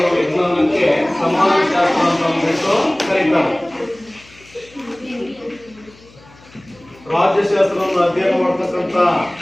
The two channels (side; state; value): left; noise; hum, 25 dB below the sound